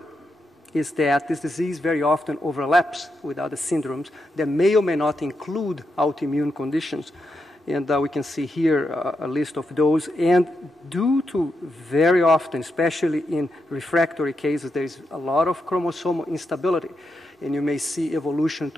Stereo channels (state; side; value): normal; both; correlation 0.84